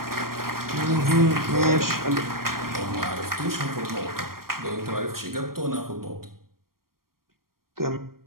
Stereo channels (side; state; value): left; late; 0.93 ms